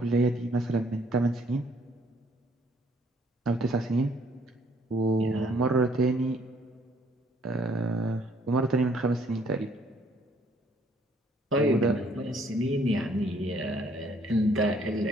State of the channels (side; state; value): both; normal; correlation 0.64